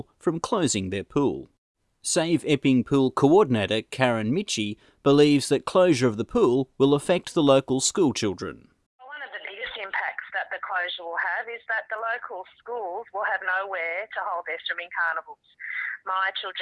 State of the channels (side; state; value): both; identical; correlation 1.00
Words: from closing their pool. Save Epping Pool coordinator Karen Mitchie believes that closure of the pool will affect the local school children. One of the biggest impacts that the closure will have is that the local schools will have nowhere to hold their swimming carnivals. My